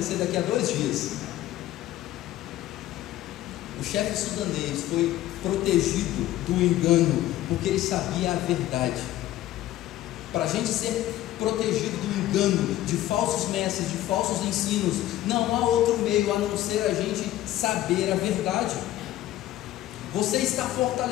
daqui a 2 dias. O chefe sudanês foi protegido do engano porque ele sabia a verdade. Para a gente ser protegido do engano, de falsos mestres, de falsos ensinos, não há outro meio a não ser a gente saber a verdade. Você está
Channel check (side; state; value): right; quieter; 14.4 dB